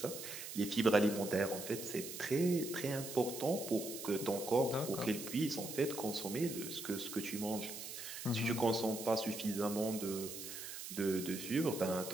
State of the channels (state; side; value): noise; right; hiss, 9 dB below the sound